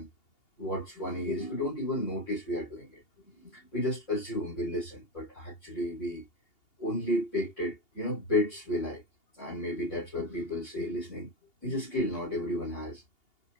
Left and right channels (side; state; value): right; late; 2.8 ms